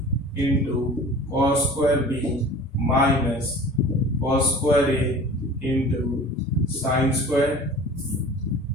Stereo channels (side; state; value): both; normal; correlation 0.41